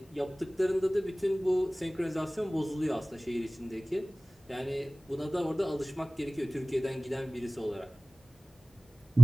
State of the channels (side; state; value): both; normal; correlation 0.98